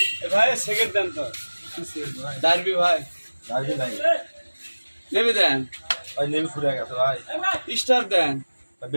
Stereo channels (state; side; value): inverted; both; correlation -1.00